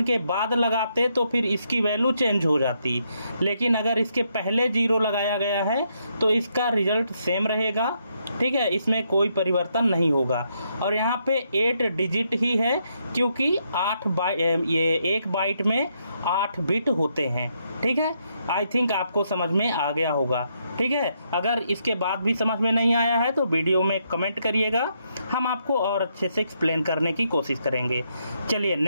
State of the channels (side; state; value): both; inverted; correlation -0.77